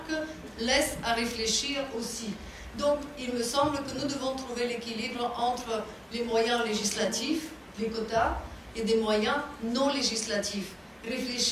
laisse à réfléchir aussi. Donc, il me semble que nous devons trouver l'équilibre entre les moyens législatifs, les quotas, et des moyens non législatifs.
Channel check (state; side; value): identical; both; correlation 1.00